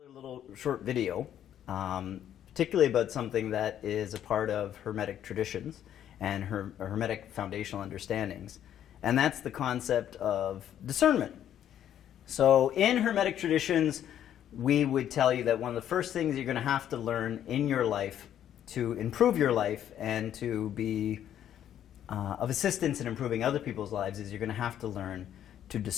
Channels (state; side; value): quieter; right; 10.5 dB